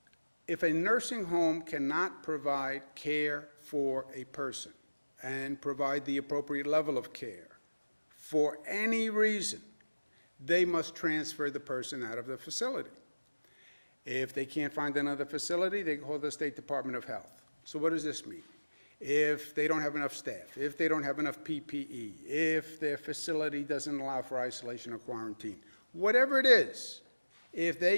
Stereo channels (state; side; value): inverted; both; correlation -1.00